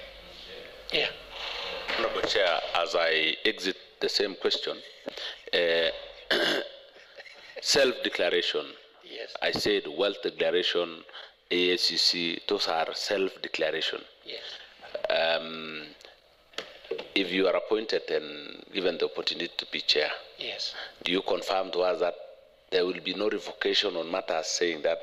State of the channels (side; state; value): both; identical; correlation 1.00